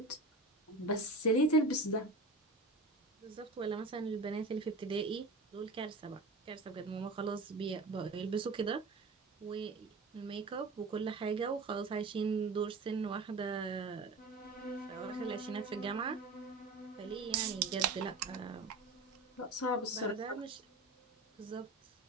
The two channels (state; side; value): quieter; left; 3.0 dB